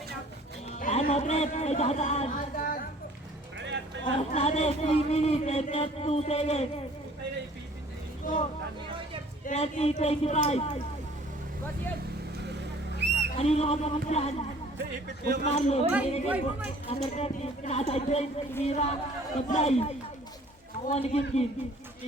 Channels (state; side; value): normal; both; correlation 0.53